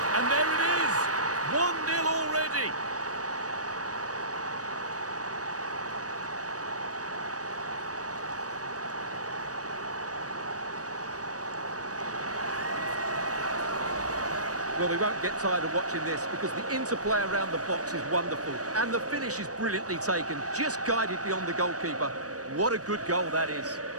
And there it is. 1-0 already. Well, we won't get tired of watching this because the interplay around the box is wonderful. And the finish is brilliantly taken, just guided beyond the goalkeeper. What a good goal that is.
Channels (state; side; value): late; left; 0.67 ms